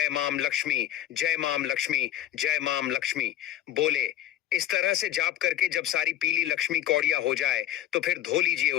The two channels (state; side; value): quieter; right; 12.3 dB